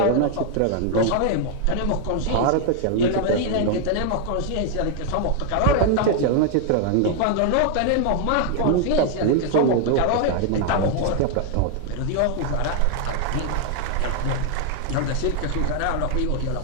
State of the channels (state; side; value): different; both; correlation 0.00